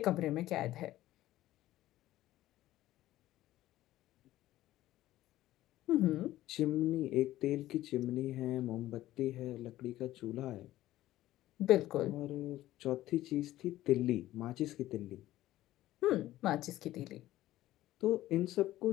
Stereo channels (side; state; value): right; quieter; 15.0 dB